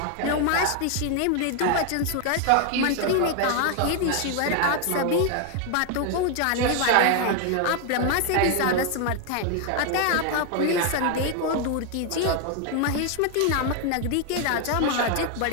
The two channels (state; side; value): different; both; correlation 0.01